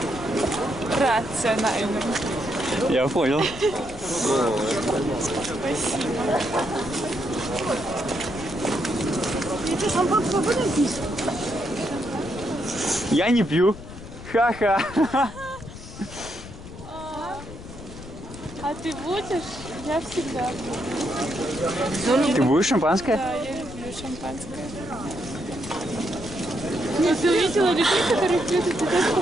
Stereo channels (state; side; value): noise; left; rumble, 14 dB below the sound